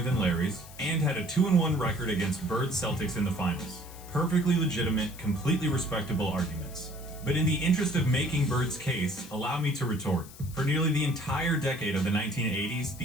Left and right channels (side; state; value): left; noise; hiss, 18 dB below the sound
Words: than Larry's, and had a 2-1 record against Bird's Celtics in the finals. Perfectly legitimate, completely respectable arguments. But in the interest of making Bird's case, allow me to retort. For nearly the entire decade of the 1980s,